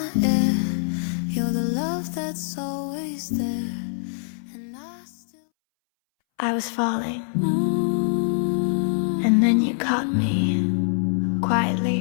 air. You're the love that's always there. And I still... I was falling, and then you caught me,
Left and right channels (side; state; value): right; silent; 62 dB below the other